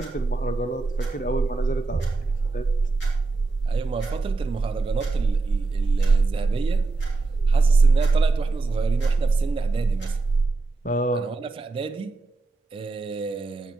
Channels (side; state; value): left; quieter; 3.6 dB